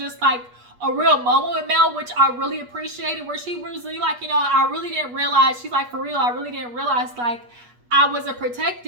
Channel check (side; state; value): left; late; 8.3 ms